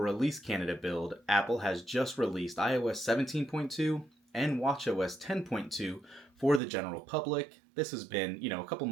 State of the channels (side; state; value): left; drops out; at 6.6 s